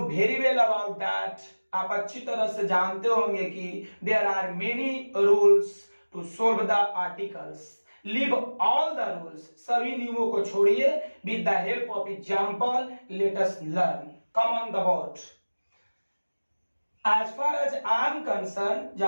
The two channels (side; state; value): both; inverted; correlation -1.00